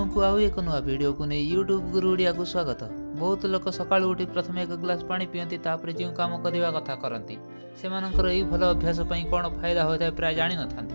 को आउ एक नुआ वीडियो को नहीं यूट्यूब गुरु ओडिया को स्वागत। बहुत लोक सकाळु उठी प्रथम एक ग्लास पानी पियंती, तापर जो काम करवा कथा करती से यही भल अभ्यास कौन फायदा होता है प्राय जानी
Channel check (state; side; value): inverted; both; correlation -1.00